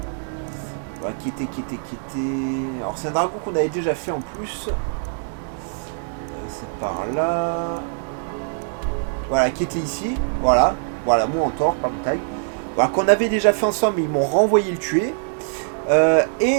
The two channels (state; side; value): silent; left; digital silence